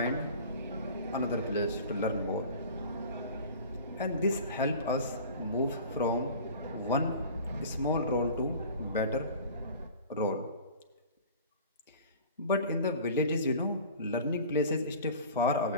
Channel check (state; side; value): inverted; both; correlation -0.41